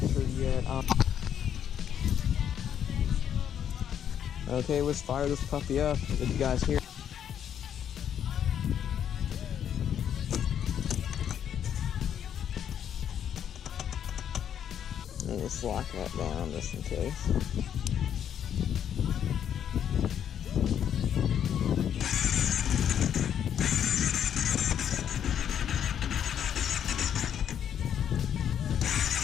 yet. Okay, let's fire this puppy up. Did you guys hear? Let's lock that down just in case.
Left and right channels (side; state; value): right; quieter; 9.2 dB